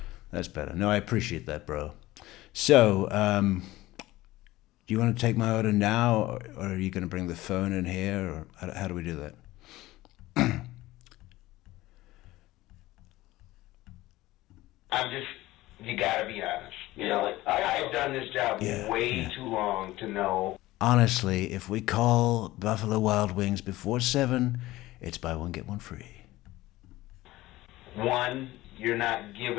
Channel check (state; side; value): quieter; right; 17.6 dB